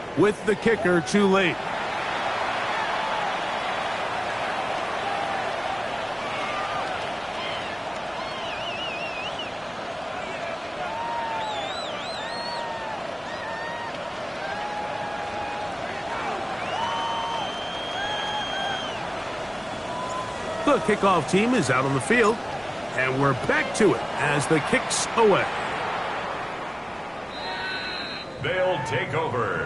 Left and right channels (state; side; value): identical; both; correlation 1.00